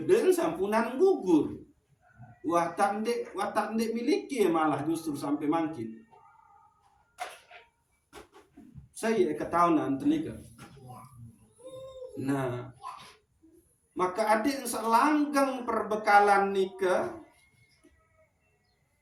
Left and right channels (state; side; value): identical; both; correlation 1.00